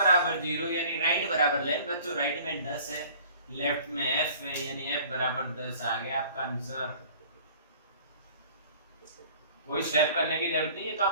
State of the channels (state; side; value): inverted; both; correlation -0.49